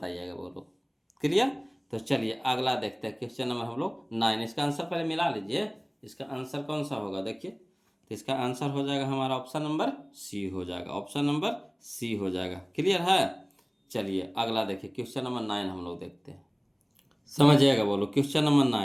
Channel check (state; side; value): identical; both; correlation 1.00